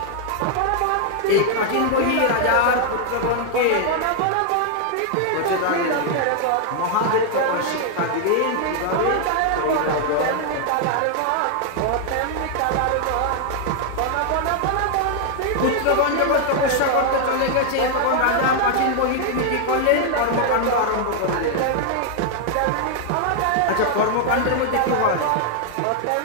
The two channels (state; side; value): different; both; correlation 0.00